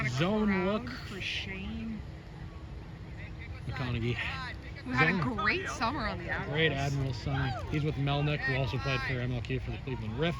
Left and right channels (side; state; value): both; identical; correlation 1.00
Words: a Zone look for Shane McConaughey. who had a great summer on the Admirals. Great Admirals summer. He's with Melnick, who also played for MLK for the Cleveland Riff.